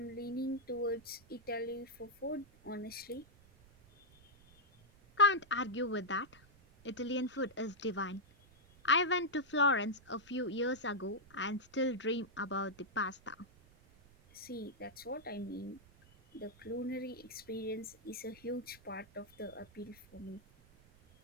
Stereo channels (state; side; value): noise; right; rumble, 26 dB below the sound